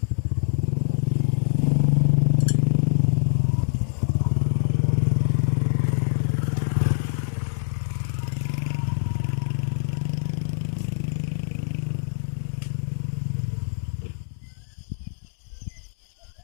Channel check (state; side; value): silent; right; digital silence